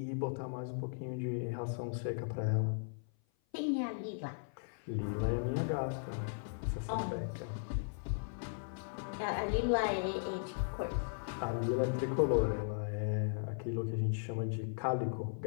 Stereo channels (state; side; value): silent; right; 53 dB below the other